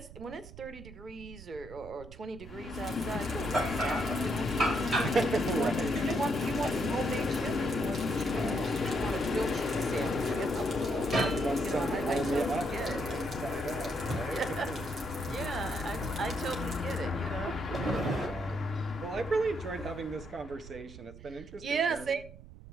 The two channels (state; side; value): noise; right; rumble, 16 dB below the sound